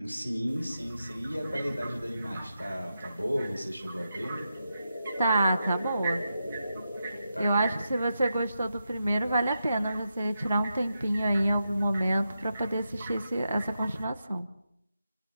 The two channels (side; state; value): both; inverted; correlation -0.87